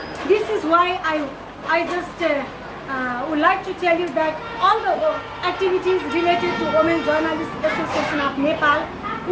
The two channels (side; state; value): both; identical; correlation 1.00